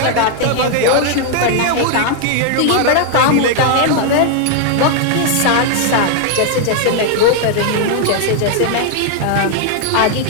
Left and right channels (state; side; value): different; both; correlation 0.00